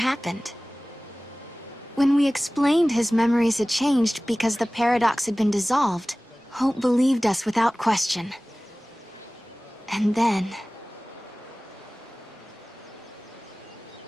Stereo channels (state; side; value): normal; both; correlation 0.98